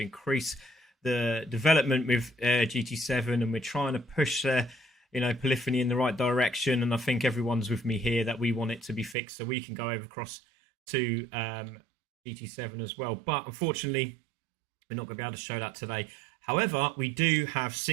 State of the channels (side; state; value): left; drops out; at 9.2 s